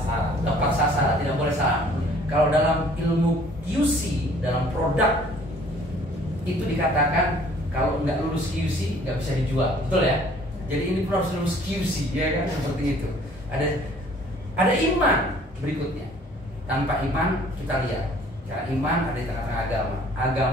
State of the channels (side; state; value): both; normal; correlation 0.55